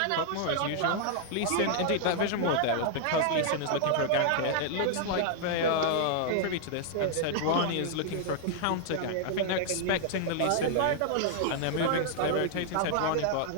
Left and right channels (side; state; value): both; different; correlation 0.00